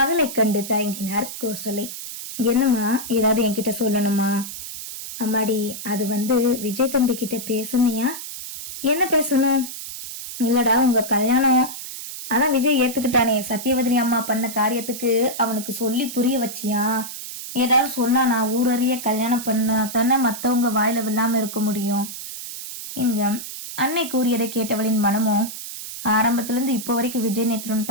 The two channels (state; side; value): noise; right; hiss, 9 dB below the sound